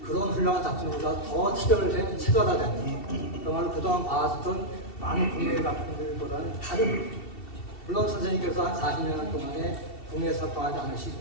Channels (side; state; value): right; late; 2.7 ms